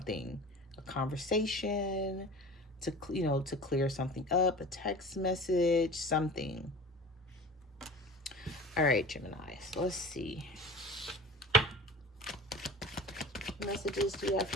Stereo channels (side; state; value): both; normal; correlation 0.37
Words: Conversation to, you know, to clear something up, a text message, something. All right, Gemini, so let's see. What messages do you have